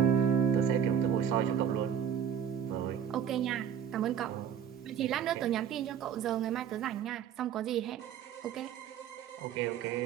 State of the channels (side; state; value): left; quieter; 8.6 dB